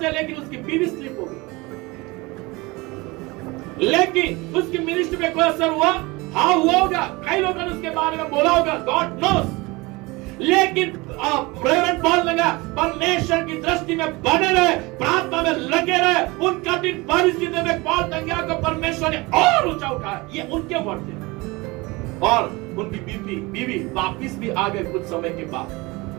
थे, लेकिन उसकी बीवी स्लिप हो गई। लेकिन उसकी मिनिस्ट्री में कोई असर हुआ? हाँ हुआ होगा, कई लोगों ने उसके बारे में बोला होगा, गॉड नोस। लेकिन रेवरेंड पॉल लगा परमेश्वर की दृष्टि में बने रहे, प्रार्थना में लगे रहे। उन कठिन परिस्थितियों में पॉल टंगिया को परमेश्वर ने और ऊंचा उठाया। ये उनके वर्ड थे। और उनकी बीवी वापिस भी आ गए कुछ समय के बाद।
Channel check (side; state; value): left; quieter; 23.6 dB